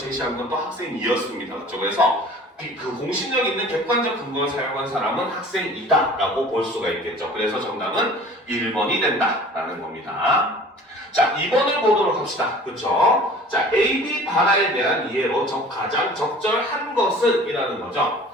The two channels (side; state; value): both; normal; correlation 0.46